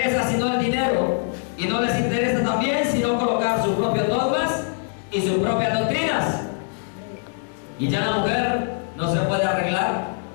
sino el dinero, y no les interesa también sino colocar sus propios dogmas y sus propias doctrinas. Y ya la mujer no se puede arreglar,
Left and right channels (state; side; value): silent; right; 63 dB below the other